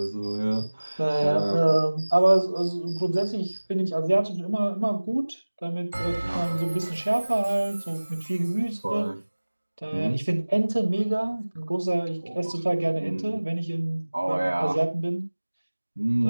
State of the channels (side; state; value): both; inverted; correlation -1.00